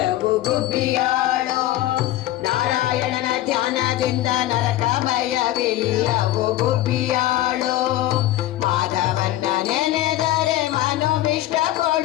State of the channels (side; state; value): right; quieter; 14.7 dB